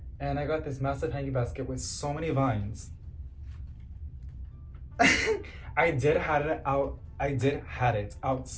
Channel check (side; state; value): both; identical; correlation 1.00